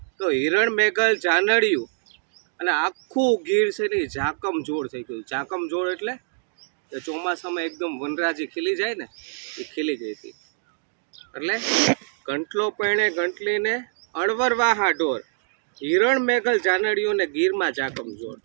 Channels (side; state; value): left; silent; digital silence